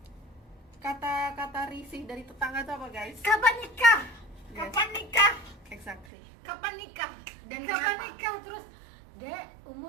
kata-kata risih dari tetangga itu apa guys? Kapan nikah? Yes. Kapan nikah? Exactly. Kapan nikah? Dan Kapan kenapa? nikah? Terus Dek,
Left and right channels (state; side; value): drops out; left; at 6.1 s